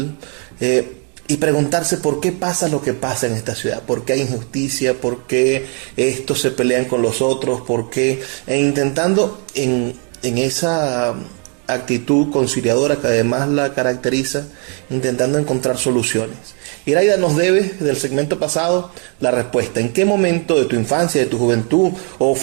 y preguntarse por qué pasa lo que pasa en esta ciudad, por qué hay injusticia, por qué estos se pelean con los otros, por qué, e intentando en esa actitud conciliadora que además la caracteriza, intentando encontrar soluciones. Iraida nos debe, del segmento pasado, la respuesta. ¿En qué momento de tu infancia, de tu juventud, o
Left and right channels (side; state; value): left; quieter; 37.3 dB